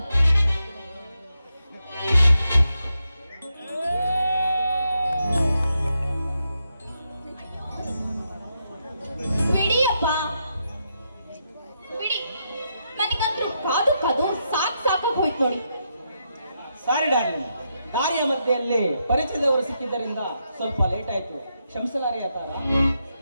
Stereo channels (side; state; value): both; inverted; correlation -0.82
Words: ಬಿಡಿಯಪ್ಪ ಬಿಡಿ, ನನಗಂತೂ ಕಾದು ಸಾಕಾಗಿ ಹೋಯ್ತು ನೋಡಿ. ಸಾರಿ ಡಾರ್ಲಿಂಗ್, ದಾರಿಯ ಮಧ್ಯೆಯಲ್ಲಿ ಪರಿಚಯದವರು ಸಿಕ್ಕಿದ್ದರಿಂದ ಸ್ವಲ್ಪ ಲೇಟ್ ಆಯ್ತು, ಕ್ಷಮಿಸಲಾರಿ ತಾರ.